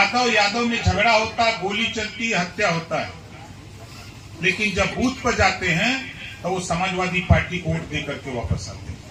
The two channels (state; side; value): identical; both; correlation 1.00